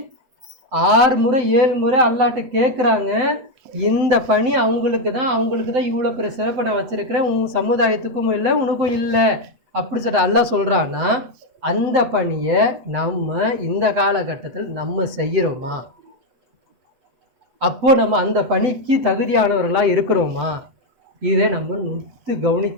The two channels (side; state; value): left; late; 8.2 ms